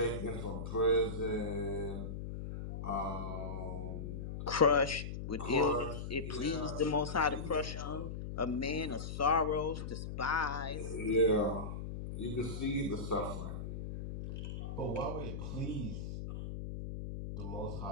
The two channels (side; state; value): left; noise; hum, 6 dB below the sound